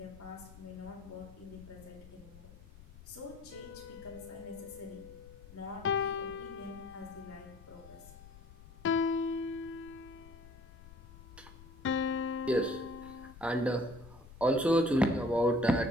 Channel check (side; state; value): left; noise; rumble, 18 dB below the sound